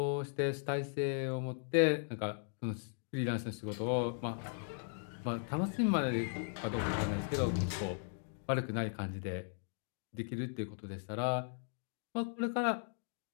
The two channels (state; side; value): silent; right; digital silence